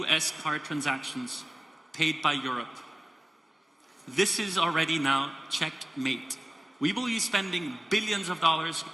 card transactions paid by Europe. This is already now checkmate. We will be spending billions of dollars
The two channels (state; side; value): normal; both; correlation 0.96